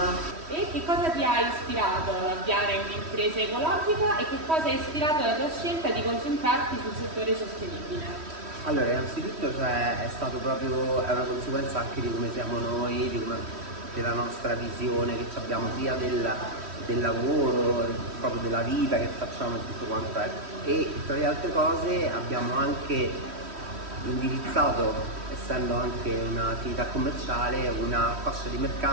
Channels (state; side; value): late; left; 3.1 ms